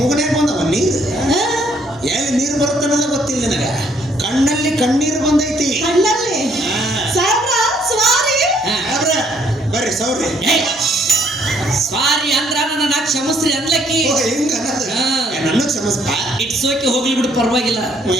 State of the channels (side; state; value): both; normal; correlation 0.66